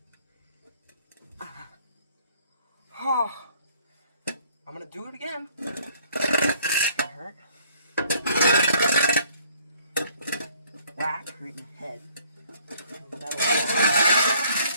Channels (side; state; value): both; inverted; correlation -0.60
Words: Oh, I'm gonna do it again. It's gonna hurt. Whack right in the head.